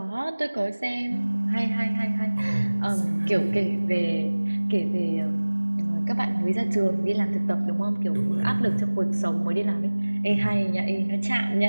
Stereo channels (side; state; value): both; inverted; correlation -1.00